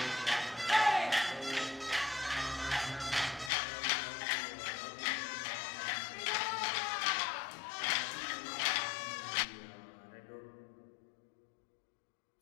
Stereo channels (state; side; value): drops out; right; at 3.5 s